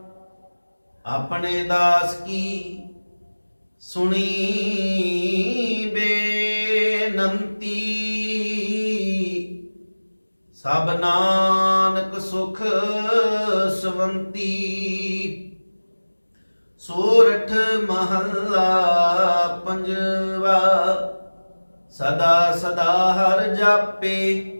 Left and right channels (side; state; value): both; inverted; correlation -1.00